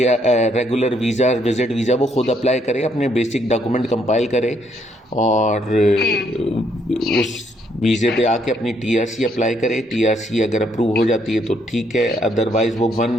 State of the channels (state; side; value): normal; both; correlation 0.71